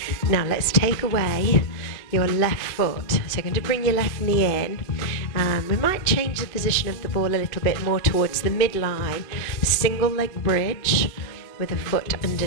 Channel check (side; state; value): right; late; 2.6 ms